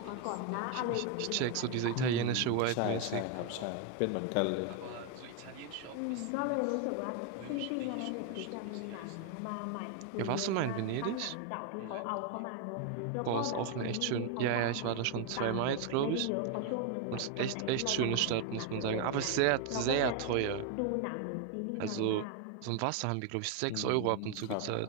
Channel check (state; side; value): different; both; correlation 0.01